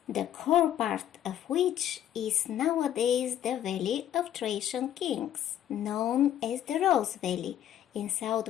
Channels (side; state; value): right; quieter; 11.1 dB